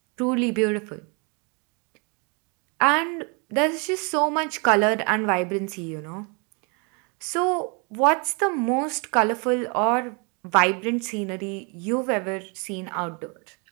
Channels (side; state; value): left; quieter; 33.7 dB